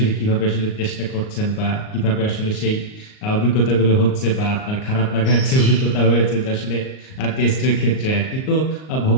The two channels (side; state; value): right; late; 38 ms